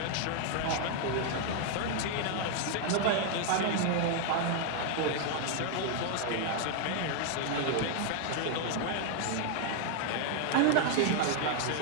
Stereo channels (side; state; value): both; different; correlation 0.00